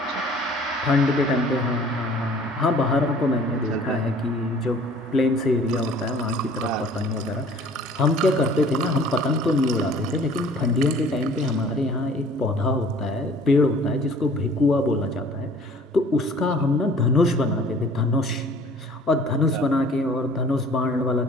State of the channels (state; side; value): normal; both; correlation 0.51